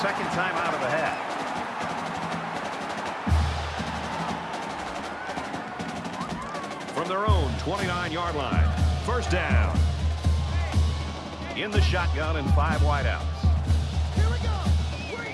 second time out of the half. From their own 29-yard line. First down. In the shotgun and 5 wideouts.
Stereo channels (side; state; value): both; identical; correlation 1.00